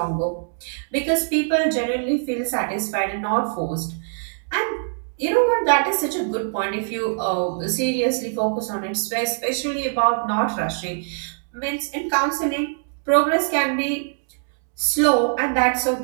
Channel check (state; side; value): silent; left; digital silence